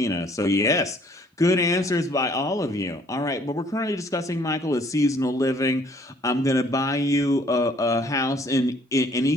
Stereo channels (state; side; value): normal; both; correlation 0.60